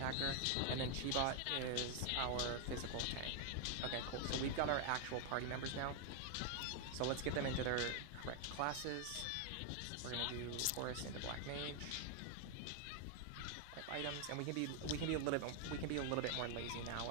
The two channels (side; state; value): both; different; correlation 0.00